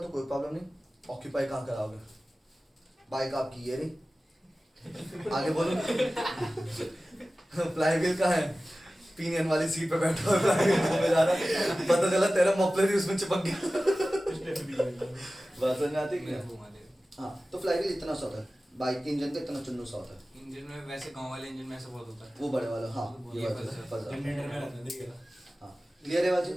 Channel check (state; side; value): normal; both; correlation 0.96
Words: कोई प्रॉब्लम नहीं. ऑक्यूपाई कहाँ कराओगे, बाइक आपकी ये रही. आगे बोलो. फ्लाईव्हील कहाँ है, पिनियन वाली सीट पे बैठा हुआ फ्लाईव्हील घूमे जा रहा है. पता चला तेरा मफलर ही उसमें चिपक गया. बात समझ में आती है क्या? हाँ, तो फ्लाईव्हील इतना सा होता है, बाइक के इंजन का इतना चुन्नू सा होता है. इंजन में वैसे गांव वाले इंजन में ऐसा बहुत होता है. वो बड़े वाला. हाँ ये ये फंसा। जनरेटर में रहता है, देखिएगा. हाँ क्लियर है बाजी.